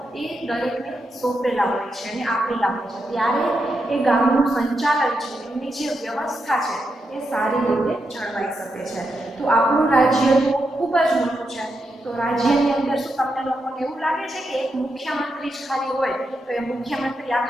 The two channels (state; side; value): normal; both; correlation 0.85